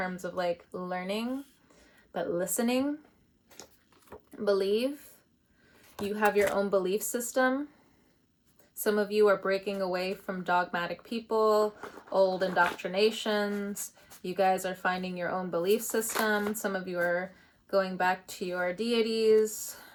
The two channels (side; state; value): both; identical; correlation 1.00